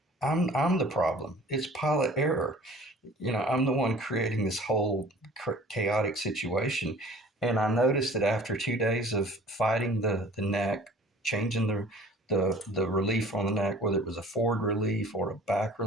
I'm the problem. It's pilot error. I'm the one creating this whole chaotic situation. And I noticed that after 2 days of fighting the neck, changing the relief on the neck, whether it was a forward relief or a back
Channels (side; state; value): both; normal; correlation 0.48